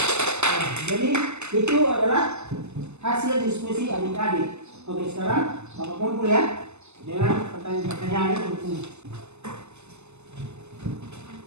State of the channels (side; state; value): left; late; 0.82 ms